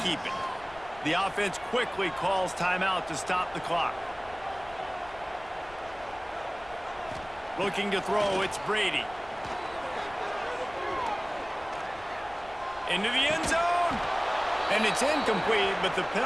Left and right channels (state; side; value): noise; left; rumble, 22 dB below the sound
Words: keep it? The offense quickly calls timeout to stop the clock. Looking to throw, it's Brady. Into the end zone. And it's incomplete, but the